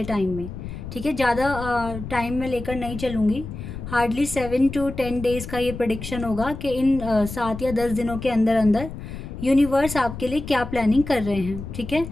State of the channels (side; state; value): left; noise; rumble, 9 dB below the sound